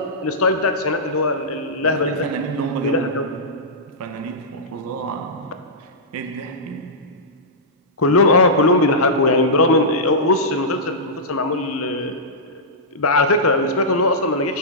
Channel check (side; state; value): both; normal; correlation -0.15